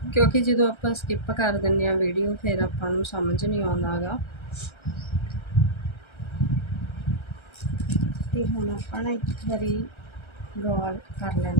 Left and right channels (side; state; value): right; late; 1.3 ms